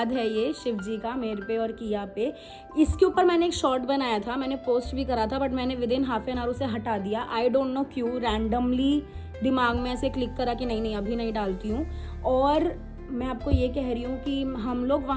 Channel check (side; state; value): both; identical; correlation 1.00